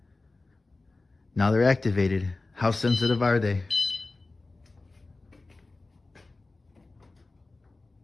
Now they're activated. How sensitive are they?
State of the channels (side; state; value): right; quieter; 3.3 dB